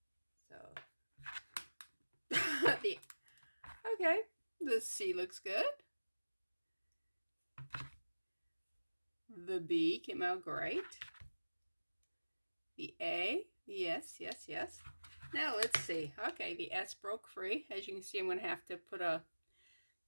So, okay, the C looks good. The B came out great. The A, yes. Now let's see. Okay, the S broke free. As you can see, I'm going to have to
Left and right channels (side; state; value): both; inverted; correlation -1.00